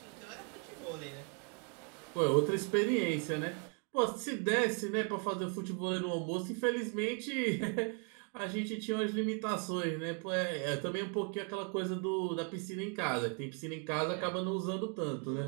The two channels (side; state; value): left; quieter; 37.3 dB